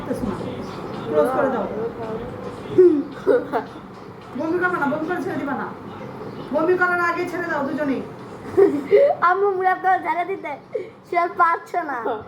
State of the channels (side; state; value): both; identical; correlation 1.00